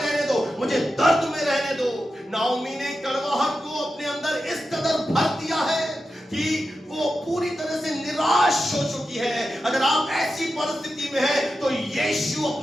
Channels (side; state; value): both; normal; correlation 0.90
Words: दो, मुझे दर्द में रहने दो। नाओमी ने कड़वाहट को अपने अंदर इस कदर भर दिया है कि वो पूरी तरह से निराश हो चुकी है। अगर आप ऐसी परिस्थिति में हैं तो यीशु